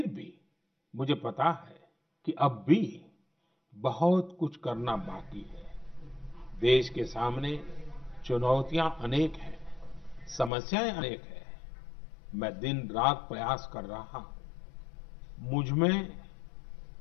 भी मुझे पता है कि अब भी बहुत कुछ करना बाकी है। देश के सामने चुनौतियां अनेक हैं, समस्याएं अनेक हैं। मैं दिन रात प्रयास कर रहा हूं। मुझ में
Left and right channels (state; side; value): drops out; right; at 10.5 s